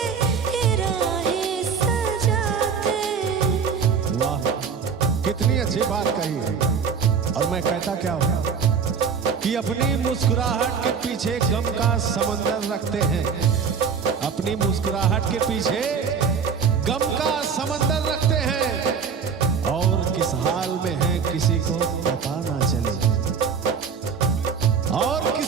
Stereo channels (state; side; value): quieter; left; 6.2 dB